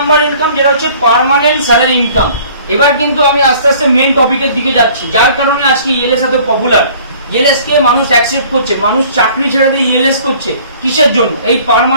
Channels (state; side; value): inverted; both; correlation -0.52